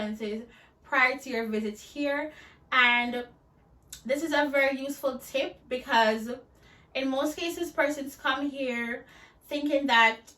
prior to your visit here. And this is a very useful tip because in most cases, persons come here thinking that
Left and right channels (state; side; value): identical; both; correlation 1.00